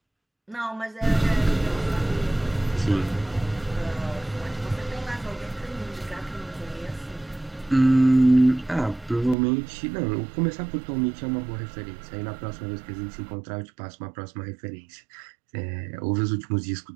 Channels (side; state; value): left; drops out; at 9.3 s